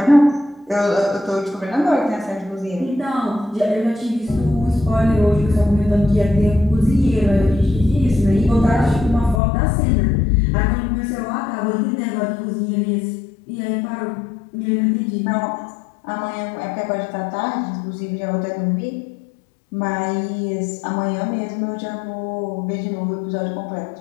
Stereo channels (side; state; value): right; drops out; at 9.4 s